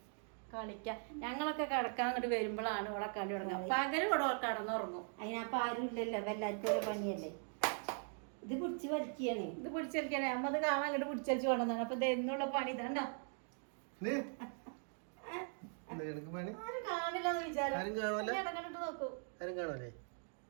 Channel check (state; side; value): silent; left; 51 dB below the other